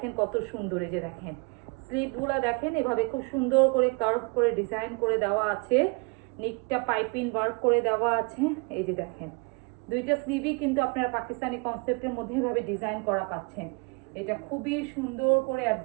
কত সুন্দর। এই যে দেখেন স্লিভগুলা দেখেন এভাবে খুব সুন্দর করে কার্ভ করে ডিজাইন করে দেওয়া আছে। নিকটা পাইপিং ওয়ার্ক করে দেওয়া আছে। এই যে দেখেন দুইটা স্লিভই কিন্তু আপনারা পাকিস্তানি কনসেপ্টের মধ্যে এভাবে ডিজাইন করা পাচ্ছেন। এটা খুবই সুন্দর করে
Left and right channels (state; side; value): quieter; left; 32.0 dB